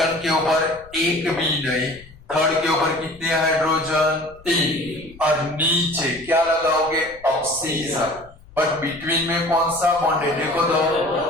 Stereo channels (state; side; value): noise; left; rumble, 23 dB below the sound